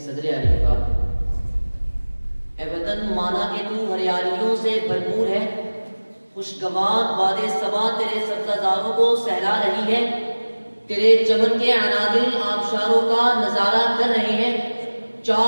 علی کا، اے وطن مانا کہ تو ہریالیوں سے بھرپور ہے، خوشگوار باد صبا تیرے سبززاروں کو سہلا رہی ہے، تیرے چمن کے عنادل آبشاروں کا نظارہ کر رہے ہیں،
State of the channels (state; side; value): inverted; both; correlation -1.00